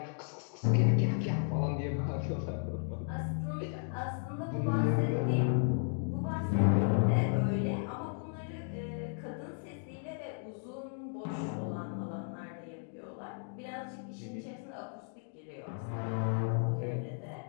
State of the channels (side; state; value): right; silent; 55 dB below the other